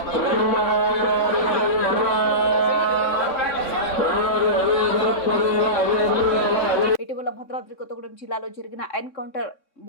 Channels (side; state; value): right; late; 3.6 ms